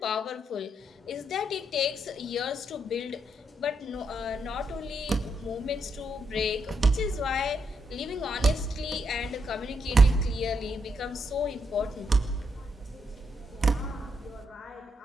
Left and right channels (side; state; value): both; normal; correlation 0.79